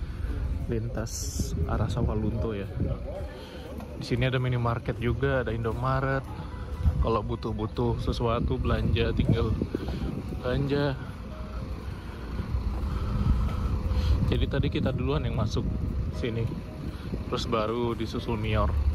lintas arah Sawalunto ya. Di sini ada minimarket juga, ada Indomaret. Kalau butuh-butuh sesuatu belanja, tinggal belanja. Jadi tadi kita duluan yang masuk sini, terus baru disusul Mior.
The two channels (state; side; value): identical; both; correlation 1.00